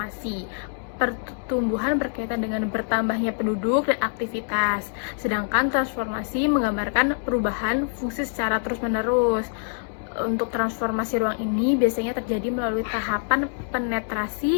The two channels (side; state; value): right; silent; 60 dB below the other